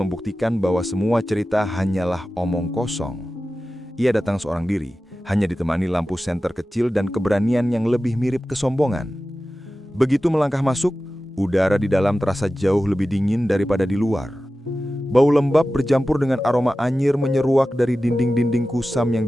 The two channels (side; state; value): both; normal; correlation 0.94